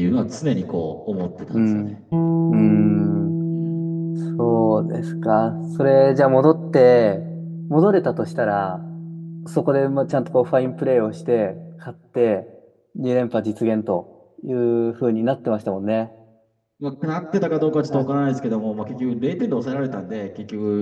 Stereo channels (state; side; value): identical; both; correlation 1.00